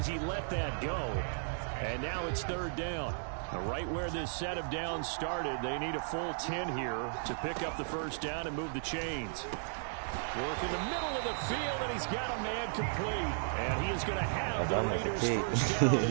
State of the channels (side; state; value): left; silent; digital silence